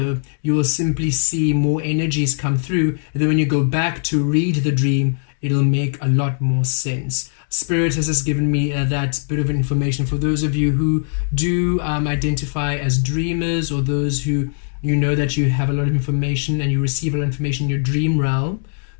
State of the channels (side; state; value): right; silent; digital silence